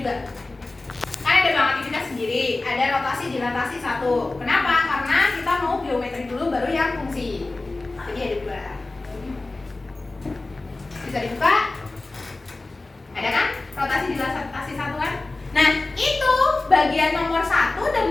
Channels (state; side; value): quieter; right; 3.2 dB